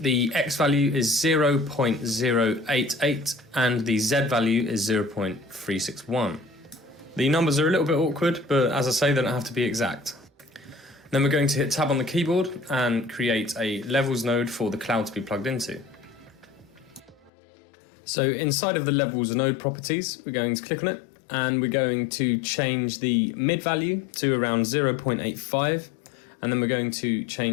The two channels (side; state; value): right; drops out; at 17.3 s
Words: the X value is 0.088 and the Z value is 0.361. The numbers are a little bit awkward, but as I say, they don't have to be exact. Then we're going to hit tab on the keyboard and create a levels node for the cloud to be plugged into. So inside of the levels node properties, we're going to click on it and we're going to change the mid value to around 0.85, and then we're going to